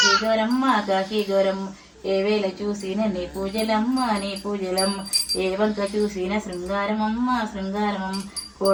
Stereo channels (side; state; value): both; identical; correlation 1.00